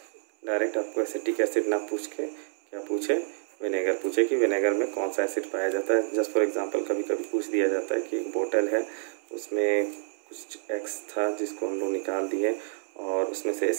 डायरेक्ट आपको एसिटिक एसिड ना पूछ के क्या पूछे? विनेगर पूछे कि विनेगर में कौन सा एसिड पाया जाता है. जस्ट फॉर एग्जांपल कभी कभी पूछ दिया जाता है कि एक बोतल है, उसमें कुछ एक्स था जिसको हम लोग निकाल दिए और उसमें से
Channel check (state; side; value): silent; left; digital silence